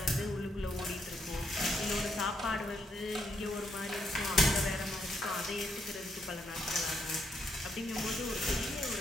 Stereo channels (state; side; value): normal; both; correlation 0.76